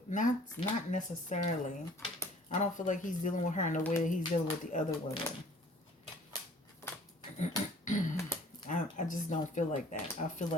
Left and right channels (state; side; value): normal; both; correlation 0.53